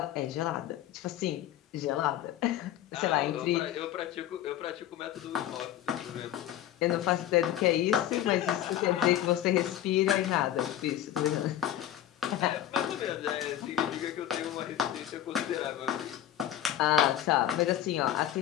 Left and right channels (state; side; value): quieter; right; 11.8 dB